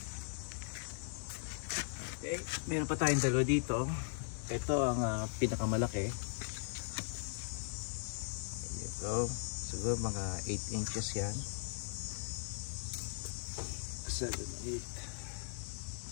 Okay, meron pa tayong dalawa dito. Ito ang pinakamalaki. Ito, siguro mga 8 inches yan. 7,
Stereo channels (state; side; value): silent; right; digital silence